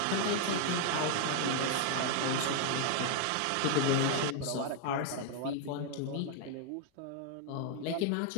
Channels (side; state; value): both; different; correlation 0.00